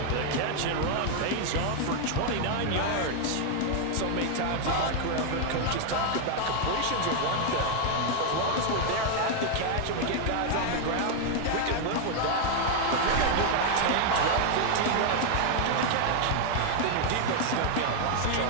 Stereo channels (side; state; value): both; different; correlation 0.00